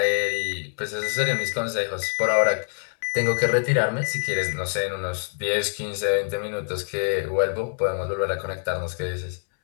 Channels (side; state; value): right; silent; 62 dB below the other